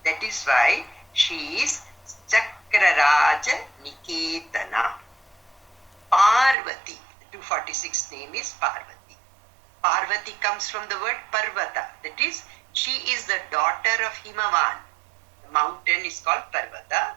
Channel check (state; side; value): drops out; left; at 6.6 s